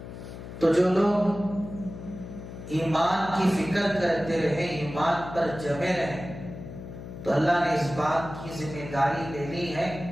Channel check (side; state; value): left; noise; hum, 12 dB below the sound